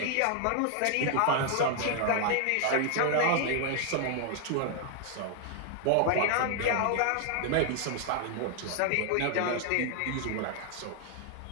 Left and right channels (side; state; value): both; different; correlation 0.00